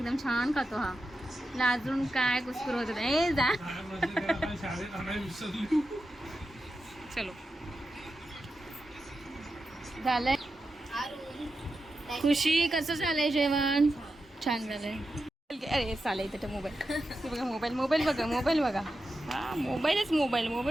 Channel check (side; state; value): both; normal; correlation 0.90